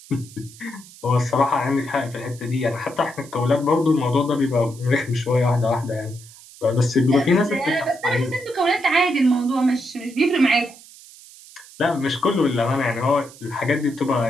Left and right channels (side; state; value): right; noise; hiss, 21 dB below the sound